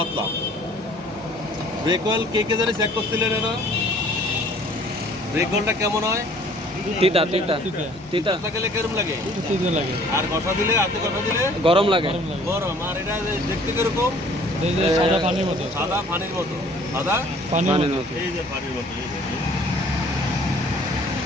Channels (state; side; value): normal; both; correlation 0.54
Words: ব্রেক অয়েল কে জানি চেক করছিলেন না? ব্রেক অয়েলটা কেমন হয়? তিতা গেলে কেরম লাগে? তিতা লাগে, আর কষা দিলে, হাতে কষা দিলে গরম লাগে। গরম লাগে। গরম। আর এটা দেখতে কিরকম? এই যে সাদা পানির মতো, সাদা পানির মতো। সাদা পানির পানির মতো। মতো। এই যে পানির মতো, এই যে